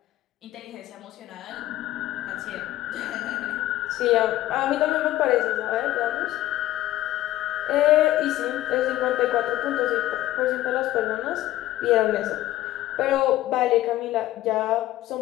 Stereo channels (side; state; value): right; quieter; 14.8 dB